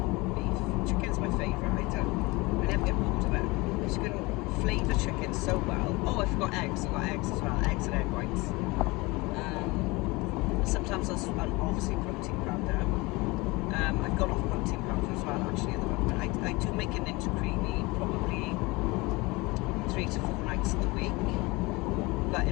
beef. Chicken's my favourite. I never get bored of it. You can flavour chicken so well. Oh, I forgot eggs. I've got eggs as well. Eggs and egg whites. Sometimes I'll obviously protein powder. I've gone off protein powder as well, actually, at the moment. I do make a Ninja Creamy probably 3 to 4 nights of the week. But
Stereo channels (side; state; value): right; quieter; 23.8 dB